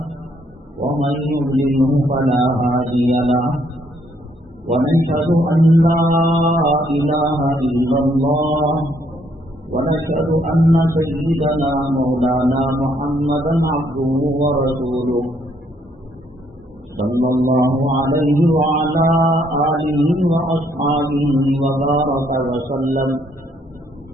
ومن يضلله فلا هادي له ونشهد أن لا إله إلا الله ونشهد أن سيدنا مولانا محمدا عبده ورسوله صلى الله عليه وعلى آله وأصحابه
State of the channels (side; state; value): both; normal; correlation 0.69